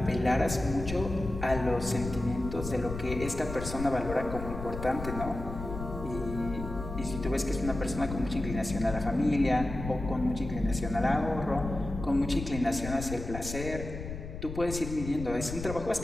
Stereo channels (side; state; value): left; noise; rumble, 8 dB below the sound